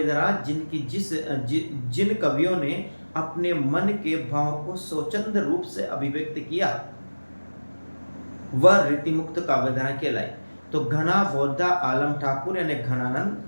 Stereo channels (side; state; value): both; inverted; correlation -1.00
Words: जिन कवियों ने अपने मन के भाव को स्वतंत्र रूप से अभिव्यक्त किया, वह रीति मुक्त काव्यधारा कहलाई। तो घना, बौद्धा, आलम, ठाकुर यानी घनानंद,